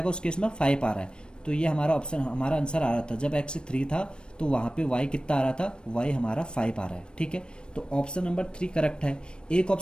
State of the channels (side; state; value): right; late; 0.054 ms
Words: उस केस में 5 आ रहा है, तो ये हमारा ऑप्शन, हमारा आंसर आ रहा था जब x 3 था तो वहाँ पे y कितना आ रहा था, y हमारा 5 आ रहा है, ठीक है। तो ऑप्शन नंबर 3 करेक्ट है। एक